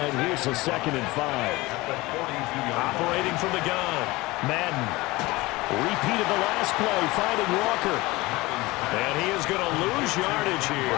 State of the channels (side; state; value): right; quieter; 21.1 dB